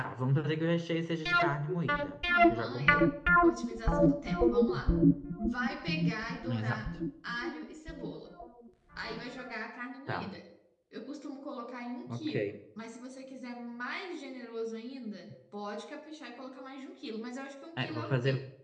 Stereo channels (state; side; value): identical; both; correlation 1.00